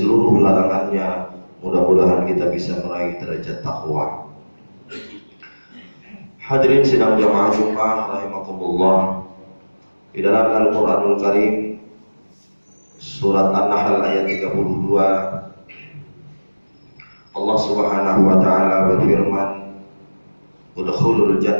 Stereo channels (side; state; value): both; inverted; correlation -1.00